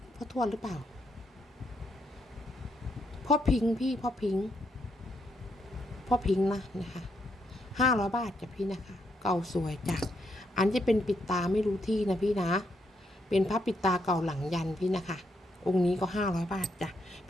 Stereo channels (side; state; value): both; normal; correlation 0.78